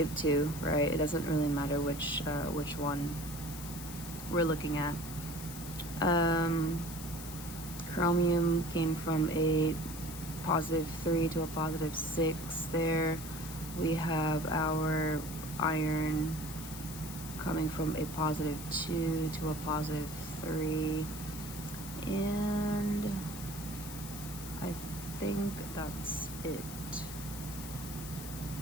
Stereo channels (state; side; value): noise; left; hiss, 11 dB below the sound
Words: right? It doesn't really matter which one we're looking at. Chromium came from a +3 to a +6 there. We have our iron coming from a +2 to a +3, and I think that's it.